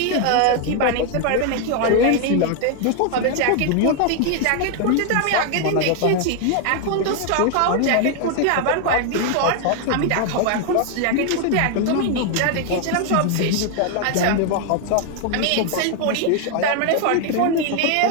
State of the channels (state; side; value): different; both; correlation 0.00